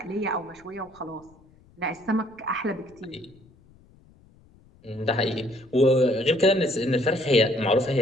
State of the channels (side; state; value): left; noise; rumble, 28 dB below the sound